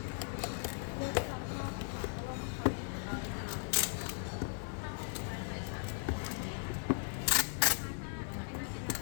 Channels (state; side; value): silent; right; 53 dB below the other